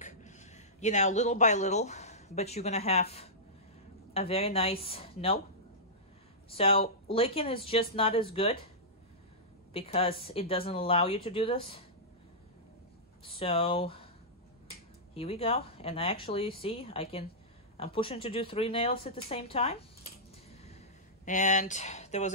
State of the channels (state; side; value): normal; both; correlation -0.14